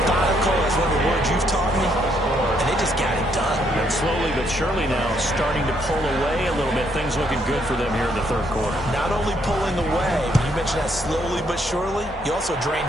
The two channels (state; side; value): normal; both; correlation 0.72